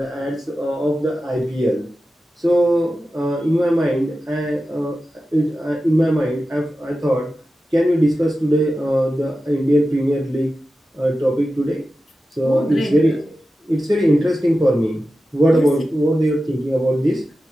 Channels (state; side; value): normal; both; correlation 0.93